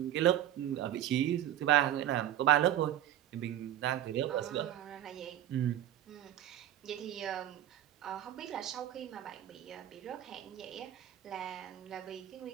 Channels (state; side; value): quieter; left; 12.1 dB